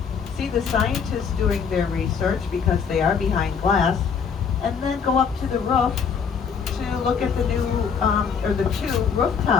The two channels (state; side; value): quieter; right; 6.4 dB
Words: see the scientists doing their research because they are behind glass, and then go up to the roof to look at the the 2